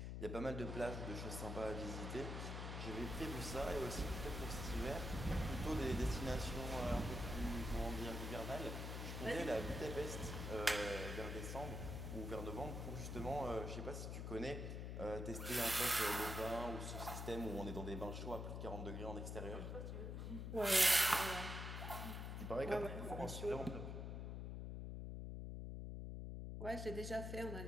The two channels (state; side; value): noise; left; hum, 4 dB below the sound